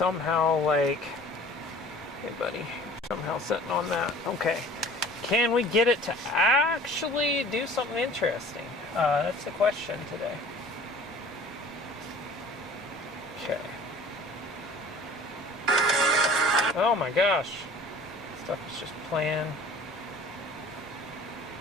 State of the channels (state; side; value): normal; both; correlation 0.47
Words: like, hey, buddy, somehow sitting on that. Okay. Can we get it to actually do something interesting? That's the question today. Okay. Oh my gosh. Stuff is just playing.